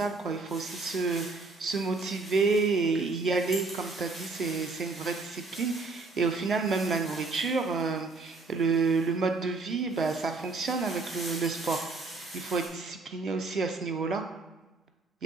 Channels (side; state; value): left; quieter; 3.7 dB